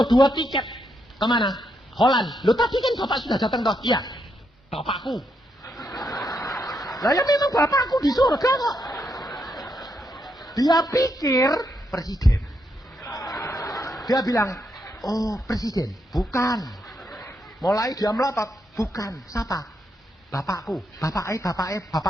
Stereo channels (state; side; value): normal; both; correlation 0.79